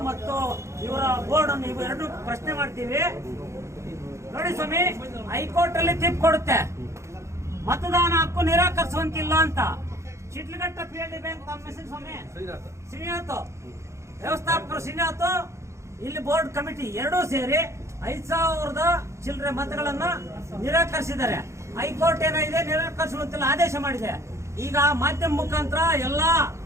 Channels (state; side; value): late; left; 0.14 ms